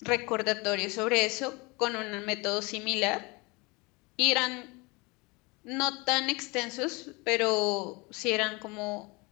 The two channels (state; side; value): quieter; right; 26.6 dB